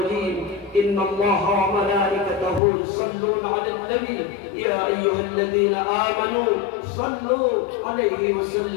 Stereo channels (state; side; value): drops out; right; at 2.6 s